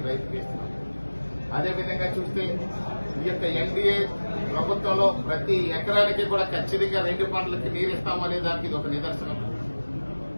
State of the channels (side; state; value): both; inverted; correlation -1.00